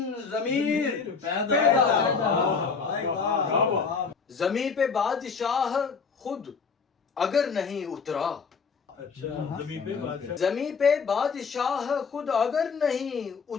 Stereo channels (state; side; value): quieter; right; 5.4 dB